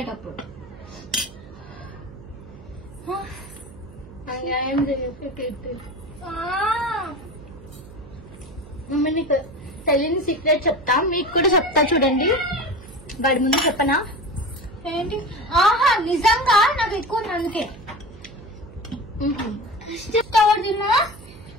మమ్మీ నీకు తెలియని సీక్రెట్ చెప్తా, మీకు కూడా చెప్తా చూడండి. వాడి ముందు చెప్పనా? ఏంటి? ఆహా నిజంగా నాకు ఎక్కువ ఉంది అందుకే చెప్తావాడు తిన్నా.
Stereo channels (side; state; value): right; noise; hum, 19 dB below the sound